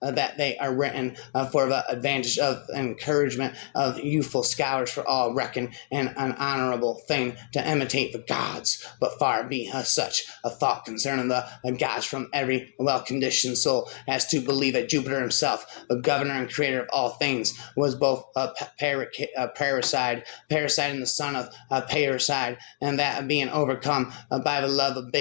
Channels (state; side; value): silent; right; digital silence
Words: they are written for the advantage of encouragement of youthful scholars, for all reckon an honorable thing to imitate the gods. But far be such a thought concerning the gods from every well-conditioned soul as to believe that Jupiter himself, the governor and creator of all things, was both a parricide and the son of parricide, and that being overcome by the love of